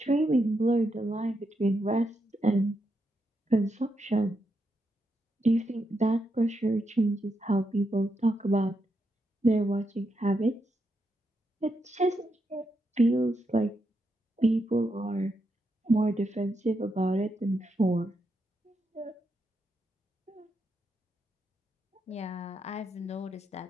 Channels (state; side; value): normal; both; correlation 0.82